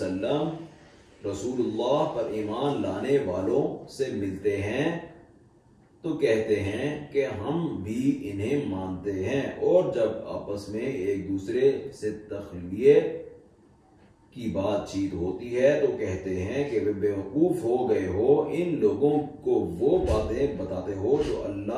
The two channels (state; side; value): identical; both; correlation 1.00